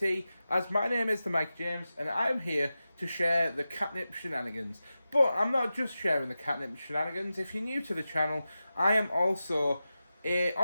as my name is the Mike James, and I am here to share the Katnipp shenanigans. But I'm not just sharing the Katnipp shenanigans. If you're new to the channel, I am also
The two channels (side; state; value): both; inverted; correlation -0.93